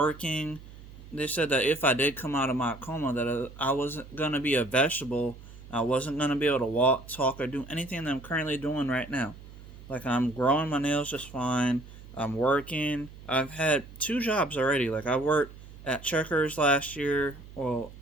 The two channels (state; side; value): noise; right; hum, 17 dB below the sound